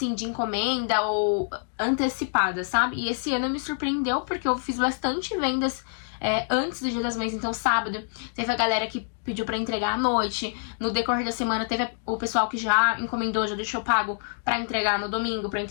de encomenda ou antecipada, sabe? E esse ano me surpreendeu porque eu fiz bastante vendas antes do Dia das Mães. Então sábado teve a galera que pediu pra entregar à noite. No decorrer da semana teve o pessoal que já encomendou, já deixou pago pra entregar no domingo, pra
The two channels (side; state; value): right; silent; digital silence